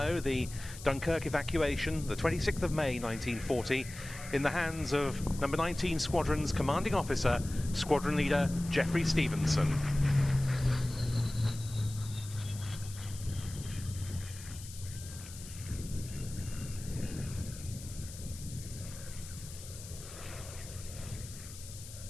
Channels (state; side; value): noise; left; hiss, 14 dB below the sound